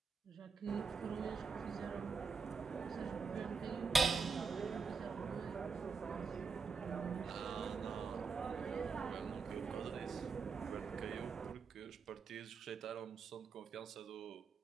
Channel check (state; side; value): quieter; left; 5.0 dB